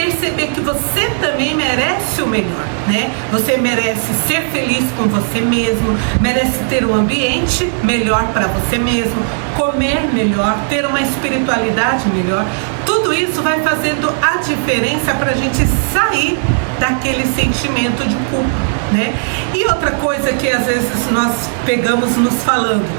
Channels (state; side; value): silent; left; digital silence